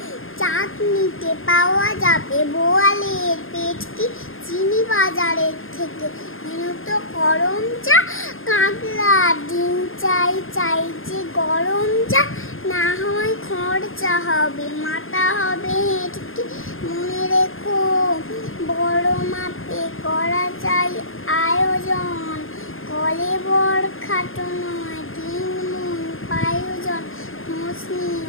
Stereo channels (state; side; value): late; right; 0.60 ms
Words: চাটনিতে পাওয়া যাবে বোয়ালের পেটকি চিনি বাজারের থেকে এনো তো গরম চা কাতলার ডিম চাই চাই যে গরম চা না হয় খরচা হবে মাথা হবে হেঁটকি মনে রেখো বড় মাপে করা চাই আয়োজন কলে বড় খাটো নয় তিন মন পায়োজন মসলিন